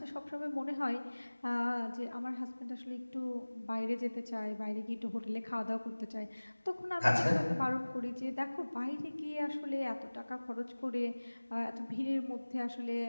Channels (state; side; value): inverted; both; correlation -1.00